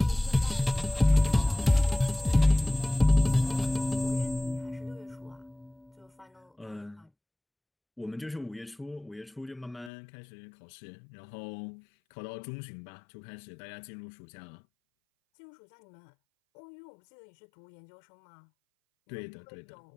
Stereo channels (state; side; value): drops out; right; at 9.9 s